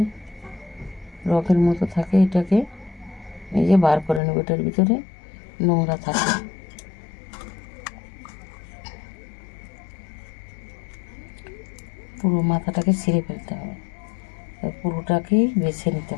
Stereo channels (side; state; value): right; drops out; at 4.2 s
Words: রকের মতো থাকে, এটাকে এই যে বার করে নেব। এটার ভিতরে নোংরা থাকে। পুরো মাথাটাকে ছিঁড়ে ফেলতে হবে, পুরোটাকেই বেছে নিতে